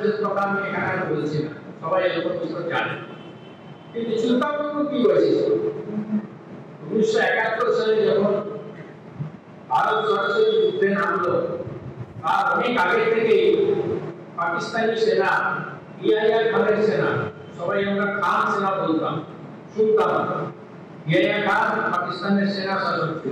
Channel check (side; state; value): both; identical; correlation 1.00